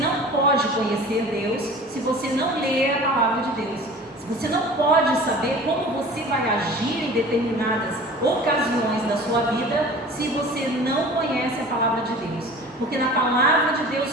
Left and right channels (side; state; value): both; normal; correlation 0.41